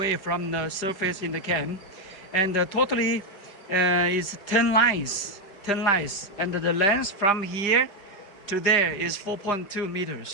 from the surface in the can. And totally is 10 lines. 10 lines. And the length from here to there is 4.2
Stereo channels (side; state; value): right; late; 5.0 ms